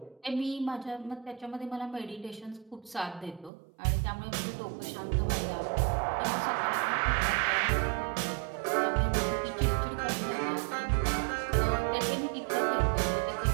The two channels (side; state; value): left; drops out; at 3.5 s